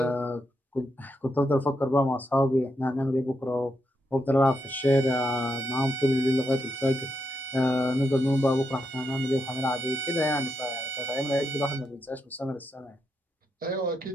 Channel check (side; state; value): both; normal; correlation 0.82